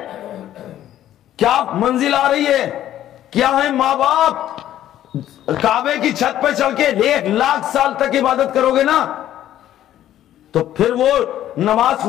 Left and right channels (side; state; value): right; quieter; 12.2 dB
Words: کیا منزل آ رہی ہے؟ کیا ہے ماں باپ کعبے کی چھت پہ چڑھ کے 1,00,000 سال تک عبادت کرو گے نا تو پھر وہ نماز